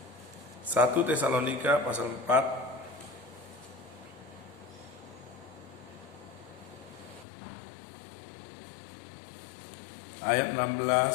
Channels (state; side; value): drops out; right; at 7.2 s